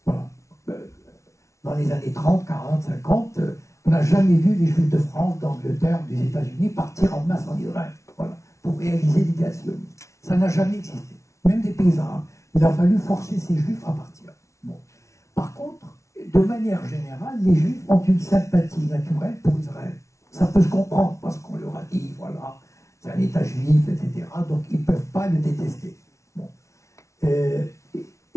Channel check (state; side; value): late; right; 0.14 ms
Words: Voilà. Dans les années 30, 40, 50, on n'a jamais vu les Juifs de France, d'Angleterre, des États-Unis partir en masse en Israël, voilà, pour réaliser l'idée sioniste. Ça n'a jamais existé. Même des paysans, il a fallu forcer ces Juifs à partir. Bon. Par contre, de manière générale, les Juifs ont une sympathie naturelle pour Israël. Ça peut se comprendre parce qu'on leur a dit, voilà, c'est un État juif, etc. Donc ils ne peuvent pas le détester. Bon.